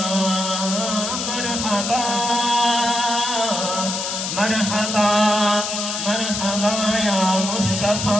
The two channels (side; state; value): left; noise; hiss, 3 dB below the sound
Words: मरहबा मरहबा मरहबा या मुस्तफा